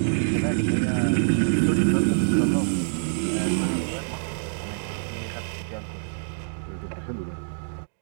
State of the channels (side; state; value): left; silent; digital silence